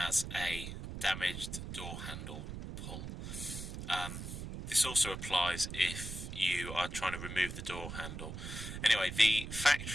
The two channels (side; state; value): right; noise; rumble, 7 dB below the sound